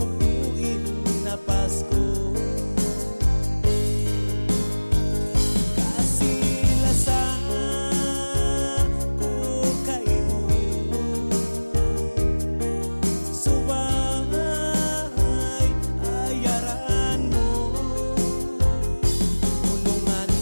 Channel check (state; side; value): inverted; both; correlation -1.00